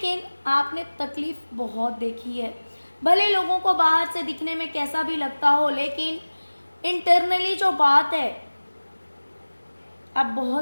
आपने तकलीफ बहुत देखी है। भले लोगों को बाहर से दिखने में कैसा भी लगता हो, लेकिन इंटरनली जो बात है, आप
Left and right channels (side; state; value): both; inverted; correlation -1.00